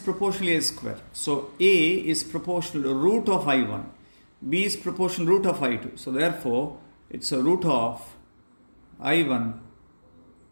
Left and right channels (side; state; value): both; inverted; correlation -1.00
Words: A square. So A is proportional to root of I1. B is proportional root of I2. So therefore, it's a root of I1